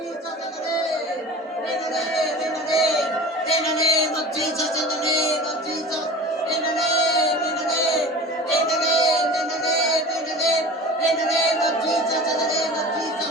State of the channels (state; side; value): normal; both; correlation 0.38